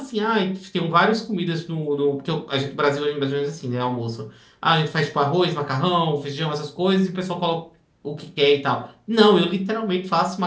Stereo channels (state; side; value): identical; both; correlation 1.00